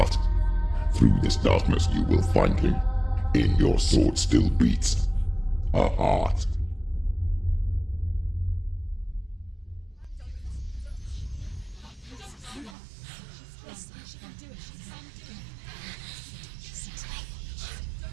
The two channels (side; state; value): left; drops out; at 12.8 s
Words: Through this darkness you will find him. In your sword still beats a heart.